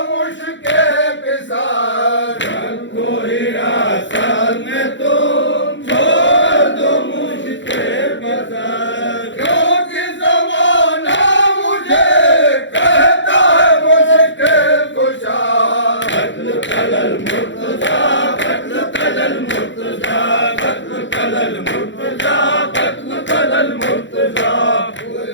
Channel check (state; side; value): late; right; 0.54 ms